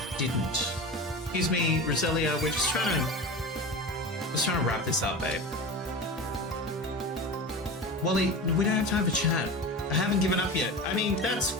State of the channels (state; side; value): normal; both; correlation 0.28